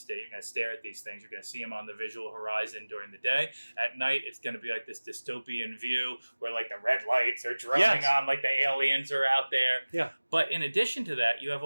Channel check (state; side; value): inverted; both; correlation -1.00